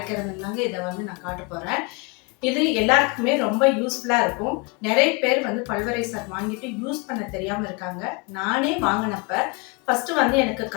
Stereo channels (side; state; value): right; quieter; 29.6 dB